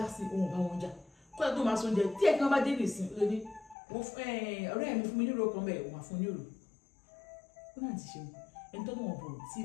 sí òun bá wọn jà kọ́lá tó máa sọ oúnjẹ tí ẹ̀kan bá dé nìsín ló ní ọ̀rẹ́ mi fún mi nírò kan bẹ́ẹ̀ òun àfún nírò ó náà ti ṣe ẹni tó lọ́wọ́ bò tí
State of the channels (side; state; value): right; drops out; at 3.8 s